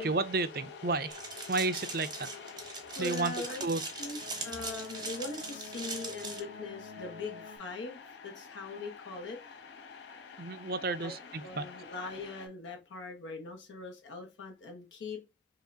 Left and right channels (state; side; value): normal; both; correlation 0.08